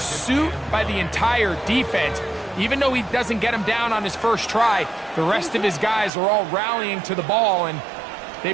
by the entire defense. Even though he doesn't get him down on his first try, the rest of his guys are all rallying to the ball, and they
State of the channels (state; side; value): drops out; left; at 6.1 s